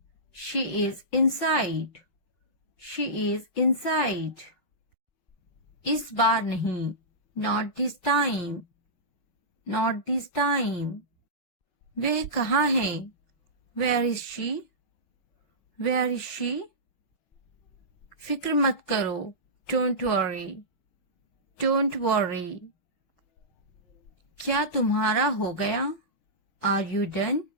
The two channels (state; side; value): late; right; 5.8 ms